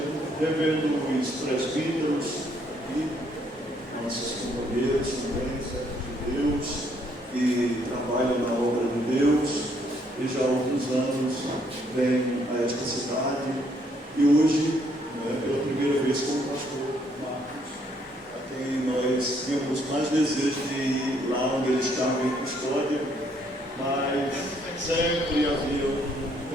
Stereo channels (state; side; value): normal; both; correlation 0.69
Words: revendo os presbíteros aqui, nossos companheiros também, servos de Deus, que trabalham na obra de Deus, e já há outros anos vêm a esta cidade, e hoje, pela primeira vez, com o pastor Marcos, a quem nós temos mais desejo de ir lá onde ele estava em custódia, mas sempre havia um